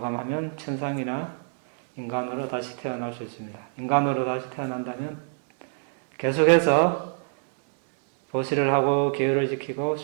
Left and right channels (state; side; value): silent; left; digital silence